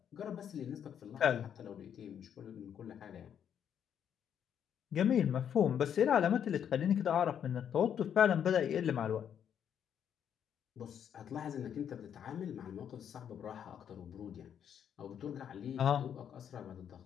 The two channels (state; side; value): quieter; right; 8.8 dB